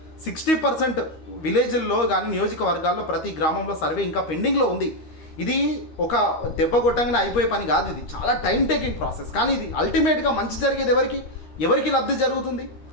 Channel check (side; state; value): right; late; 13 ms